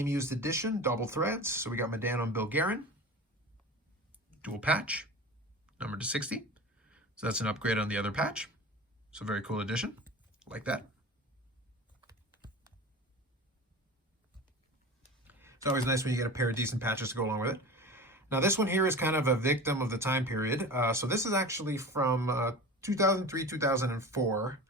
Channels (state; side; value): normal; both; correlation 0.33